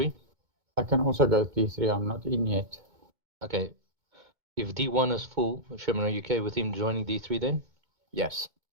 I can also go D3. I'm not in yet. Okay. If D1 is full, Sherman, are you okay with him joining D3 then? Yes.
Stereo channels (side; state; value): left; late; 2.2 ms